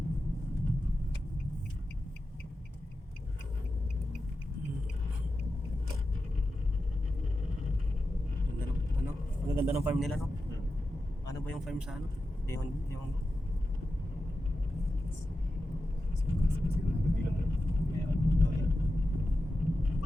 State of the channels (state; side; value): normal; both; correlation 0.91